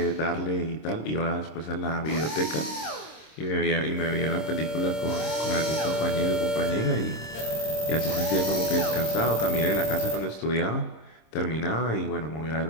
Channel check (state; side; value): late; right; 26 ms